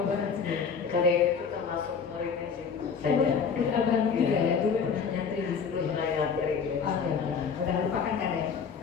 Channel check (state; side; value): quieter; right; 6.1 dB